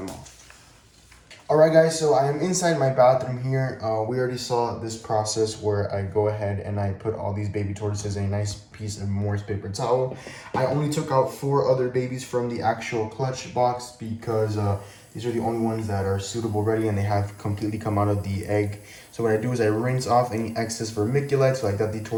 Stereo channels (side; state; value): both; identical; correlation 1.00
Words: off. Alright guys, so I am inside my bathroom here. We already saw this process where I go ahead and I put all these baby tortoises in a nice piece of moist paper towel. I only took out 4 other babies from the actual clutch box, because these are the only ones that are suitable ready and they have completely come out of the egg. So what I do is I rinse off any excess vermiculite, so like that the